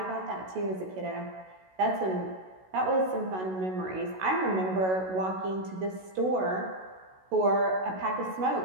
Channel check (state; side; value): late; left; 16 ms